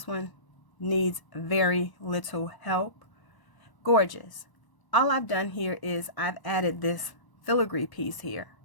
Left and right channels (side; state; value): right; late; 1.0 ms